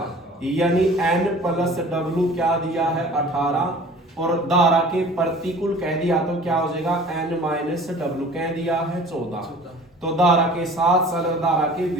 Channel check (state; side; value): normal; both; correlation 0.45